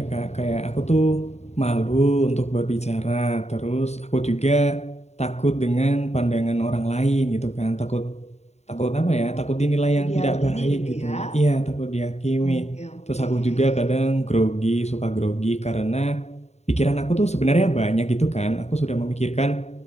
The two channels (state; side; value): late; right; 0.32 ms